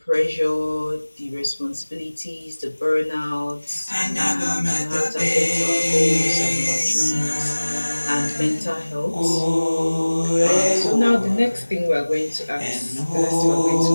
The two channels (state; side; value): inverted; both; correlation -1.00